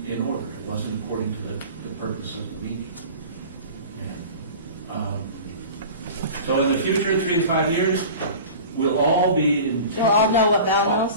in order. It wasn't according to the purpose of the meeting. And, so in the future, 3 to 5 years, we'll all be in... We'll all know what Val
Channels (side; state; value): both; inverted; correlation -0.38